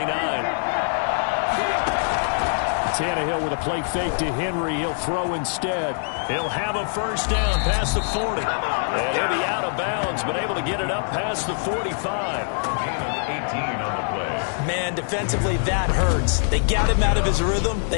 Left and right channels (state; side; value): silent; right; 57 dB below the other